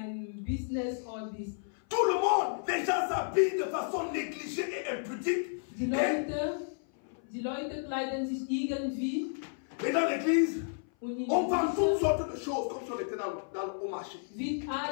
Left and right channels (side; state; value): right; silent; 56 dB below the other